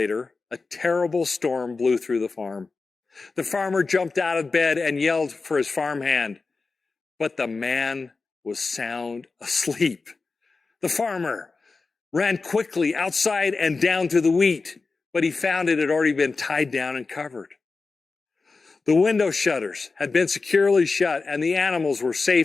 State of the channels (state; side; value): quieter; right; 4.1 dB